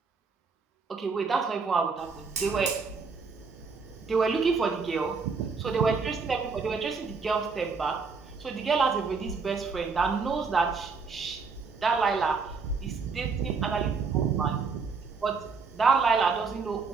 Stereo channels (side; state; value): left; quieter; 4.9 dB